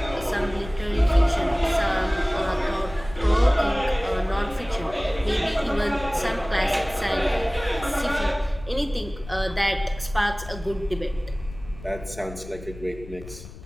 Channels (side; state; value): left; noise; rumble, 15 dB below the sound